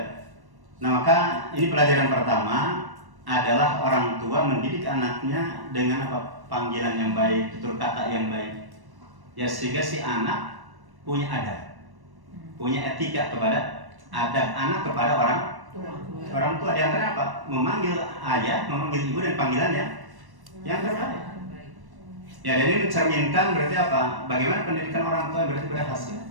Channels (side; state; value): left; late; 1.1 ms